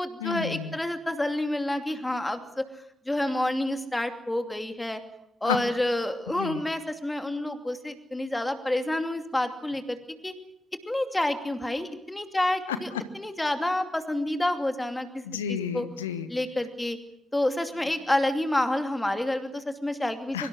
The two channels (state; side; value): normal; both; correlation 0.89